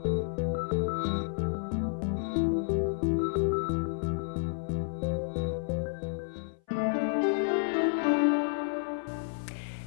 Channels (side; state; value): right; silent; 57 dB below the other